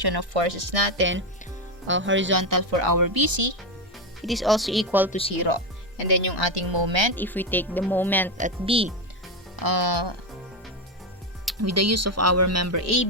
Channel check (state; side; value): normal; both; correlation 0.10